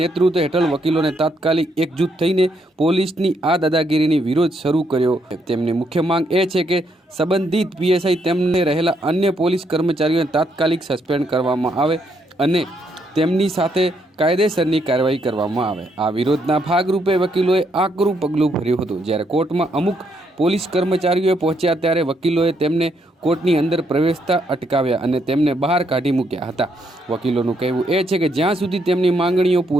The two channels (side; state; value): both; normal; correlation 0.75